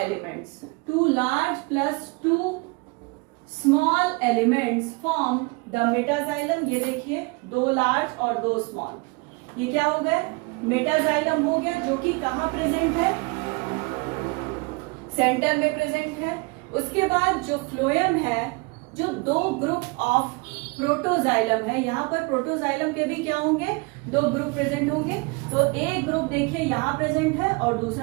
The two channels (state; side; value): quieter; left; 27.5 dB